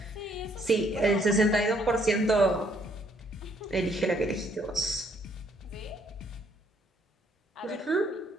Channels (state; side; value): normal; both; correlation 0.67